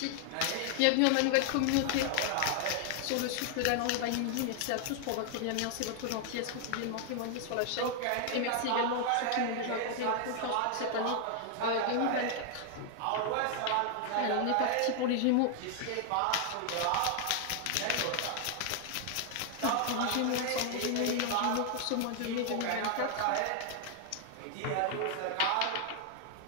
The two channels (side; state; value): both; different; correlation 0.00